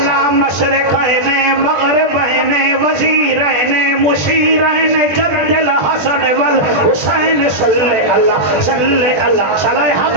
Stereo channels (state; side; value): late; left; 20 ms